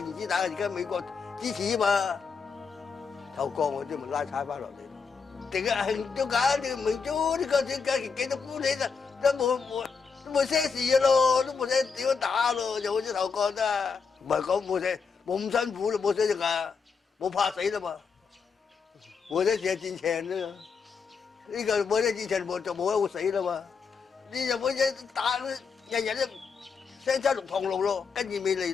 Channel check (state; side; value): quieter; right; 5.5 dB